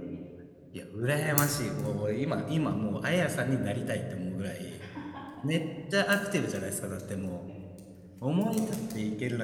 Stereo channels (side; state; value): both; identical; correlation 1.00